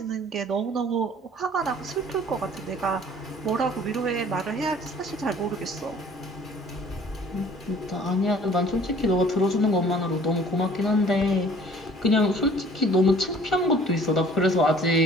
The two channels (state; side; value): normal; both; correlation 0.52